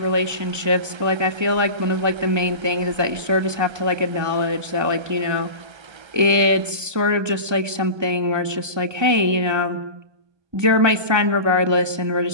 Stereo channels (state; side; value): late; left; 1.2 ms